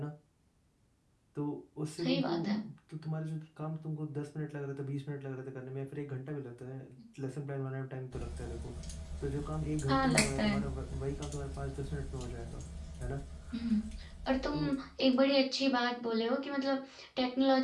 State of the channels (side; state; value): both; identical; correlation 1.00